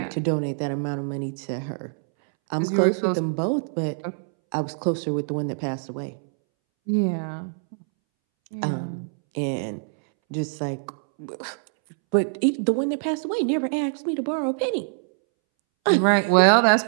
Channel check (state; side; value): silent; left; 62 dB below the other